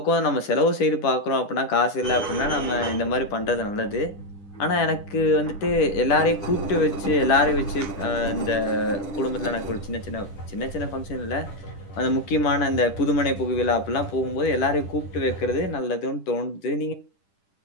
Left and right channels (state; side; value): late; right; 10 ms